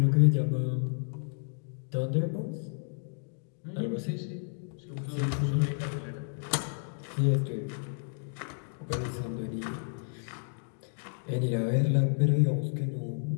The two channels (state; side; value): silent; right; 57 dB below the other